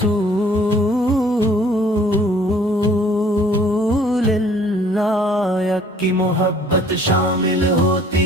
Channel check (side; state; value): both; normal; correlation 0.56